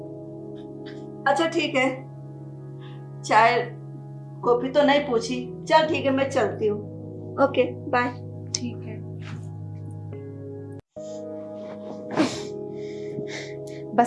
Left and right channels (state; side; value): identical; both; correlation 1.00